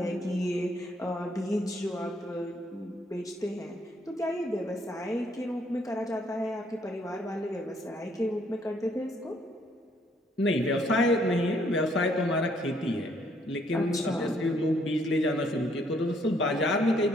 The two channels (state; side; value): normal; both; correlation 0.68